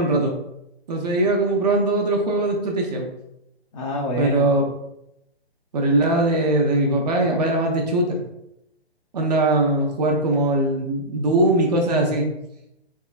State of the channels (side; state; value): both; normal; correlation -0.13